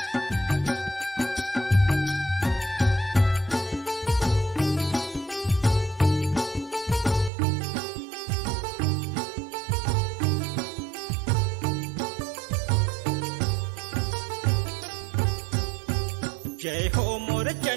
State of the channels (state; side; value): drops out; left; at 7.3 s